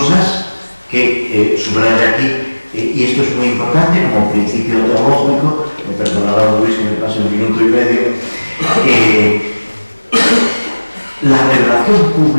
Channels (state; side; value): inverted; both; correlation -1.00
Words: que subraya aquí, y esto es muy importante como principio teológico. Me perdonará Luis que me pase un minuto y medio. La revelación